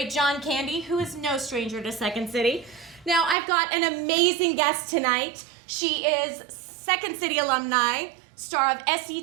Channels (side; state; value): left; drops out; at 3.4 s